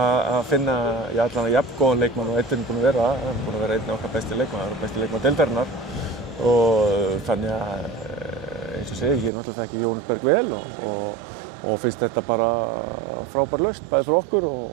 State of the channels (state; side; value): drops out; left; at 9.3 s